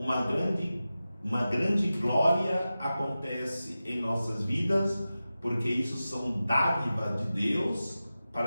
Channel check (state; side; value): inverted; both; correlation -0.94